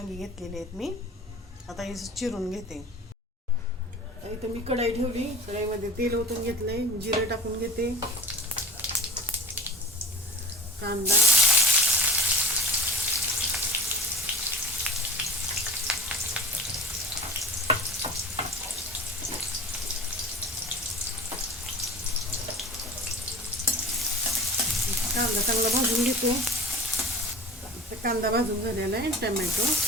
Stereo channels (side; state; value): both; normal; correlation 0.40